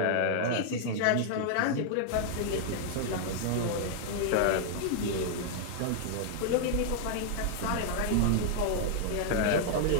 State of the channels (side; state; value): both; different; correlation -0.01